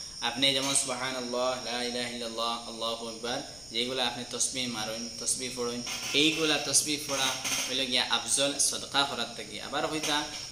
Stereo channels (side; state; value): left; noise; rumble, 21 dB below the sound